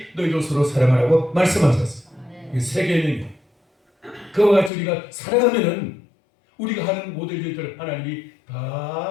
너희도 서로 사랑하라고 말씀하셨습니다. 이게 새 계명이에요. 그와 같이 우리가 사랑하면은 우리가 하는 모든 일들을 하나님이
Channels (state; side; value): drops out; right; at 4.7 s